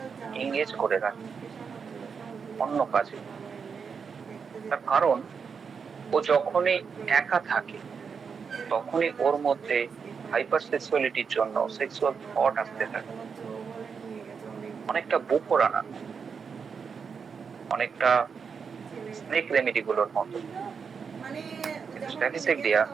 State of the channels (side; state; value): left; quieter; 6.0 dB